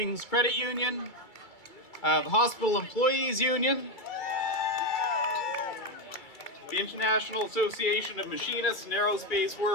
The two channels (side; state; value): right; late; 2.3 ms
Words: Credit Union, the Hospital Employees Union, the International Association of Machinists and Aerospace